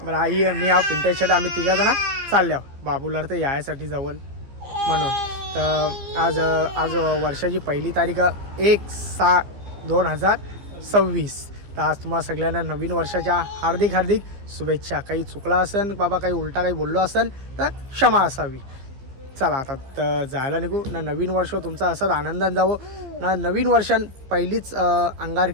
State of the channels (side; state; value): left; late; 15 ms